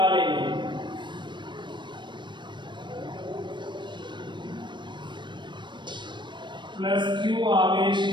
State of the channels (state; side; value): late; left; 0.22 ms